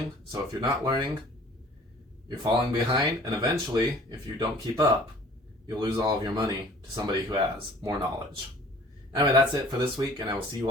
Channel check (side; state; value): both; normal; correlation 0.51